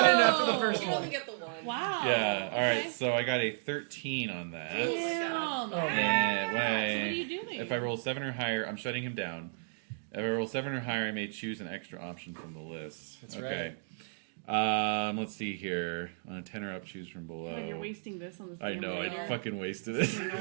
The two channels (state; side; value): silent; left; digital silence